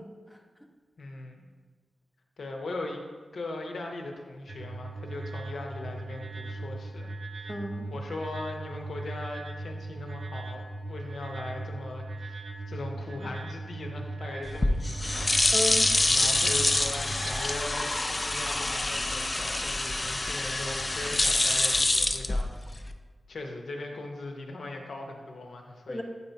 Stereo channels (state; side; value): normal; both; correlation 0.96